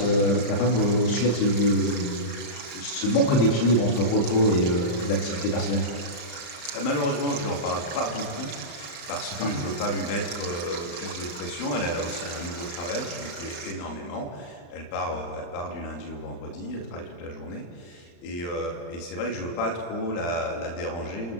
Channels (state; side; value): late; right; 34 ms